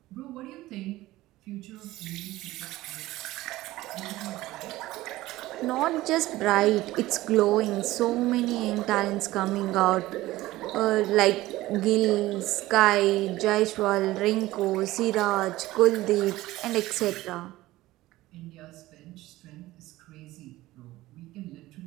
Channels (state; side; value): quieter; left; 17.2 dB